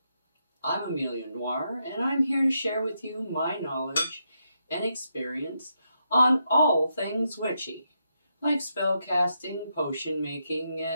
I'm Amelia Noir, and I'm here to share with you my knowledge and experience on all things witchy, like spell casting, potion making,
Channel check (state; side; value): inverted; both; correlation -0.81